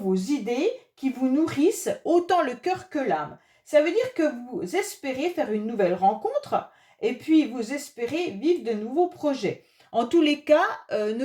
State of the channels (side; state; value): both; identical; correlation 1.00